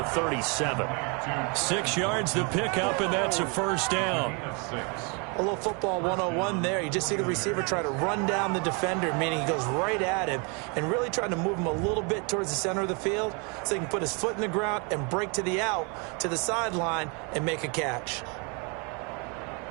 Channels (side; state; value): left; quieter; 33.3 dB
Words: 37. 6 yards to pick up, and that's a first down. A little football 101 there. You just see the receiver try to run down the defender, meaning he goes right at him and really trying to move him a little bit towards the center of the field so he can put his foot in the ground and break to the out, to the sideline, and make a catch.